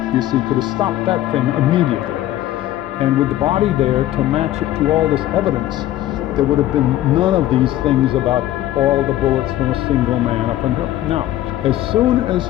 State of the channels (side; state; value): right; quieter; 13.9 dB